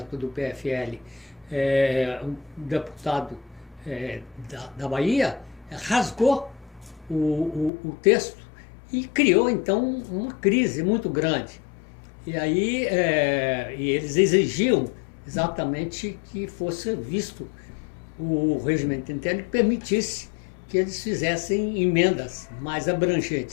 do PFL, um deputado da Bahia, rasgou o texto e criou, então, uma crise muito grande. E aí e eles exigiam exatamente que fosse visto o regimento interno que permitisse que eles fizessem emendas mais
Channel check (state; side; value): drops out; right; at 7.7 s